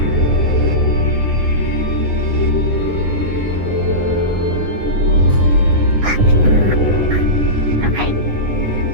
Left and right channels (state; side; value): late; left; 9.7 ms